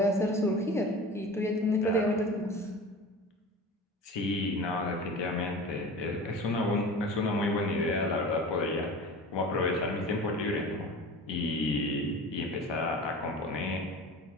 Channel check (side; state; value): both; normal; correlation 0.36